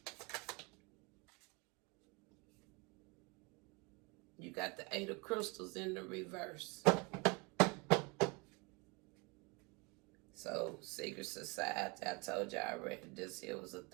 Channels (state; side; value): quieter; left; 29.0 dB